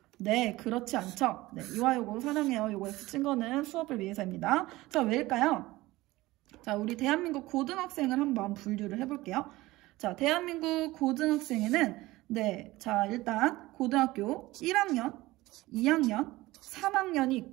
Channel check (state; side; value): quieter; left; 18.8 dB